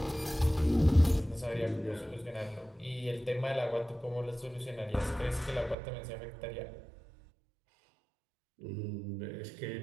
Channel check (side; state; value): left; drops out; at 5.8 s